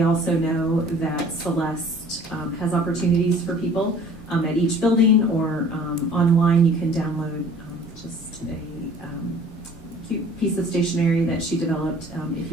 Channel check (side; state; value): both; normal; correlation 0.50